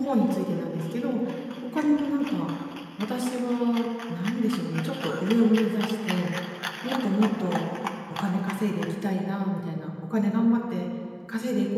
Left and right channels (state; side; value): identical; both; correlation 1.00